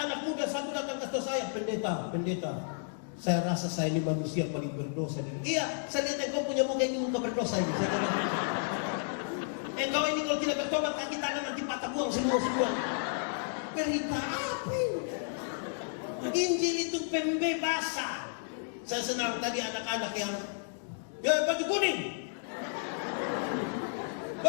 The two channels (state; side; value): silent; right; digital silence